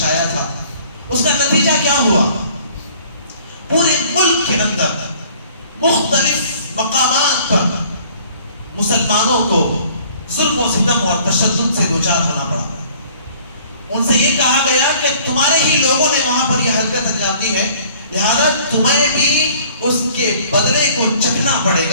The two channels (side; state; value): both; inverted; correlation -0.54